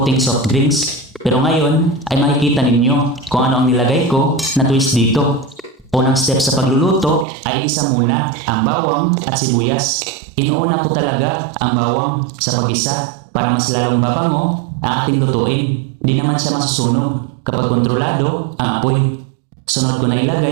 soft drinks. Pero ngayon ay makikita ninyo kung ano ang nilagay ko na twist dito. Unang step sa pagluluto ay igisa muna ang bawang at sibuyas. Inuuna ko talaga ang bawang sa pag-isa para mas lalong babango ang ating lutuin. Di naman siya masusunog kapag kontrolado ang apoy. Sunod ko na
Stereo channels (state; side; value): drops out; left; at 7.2 s